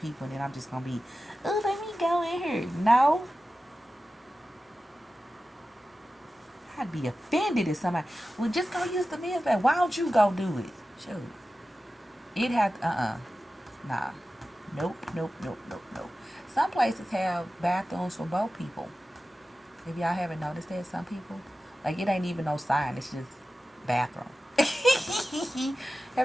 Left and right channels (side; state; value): both; normal; correlation 0.94